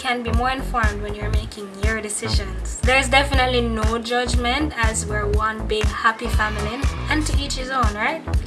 be more informed when you're making your decisions. There's definitely no judgment, as we're one big happy family, and to each his own, right?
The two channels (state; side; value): identical; both; correlation 1.00